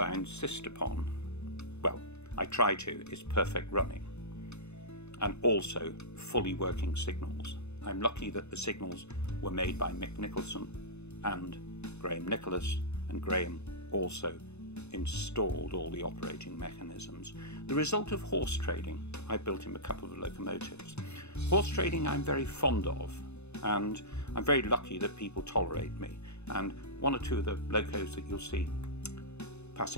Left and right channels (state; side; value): late; right; 0.81 ms